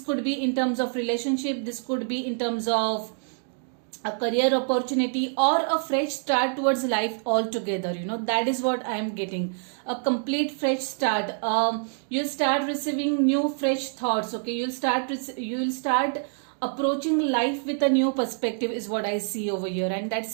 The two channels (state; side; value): silent; left; 59 dB below the other